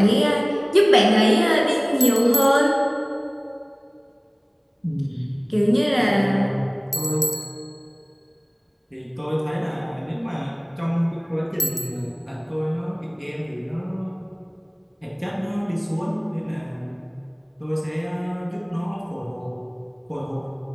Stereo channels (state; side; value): identical; both; correlation 1.00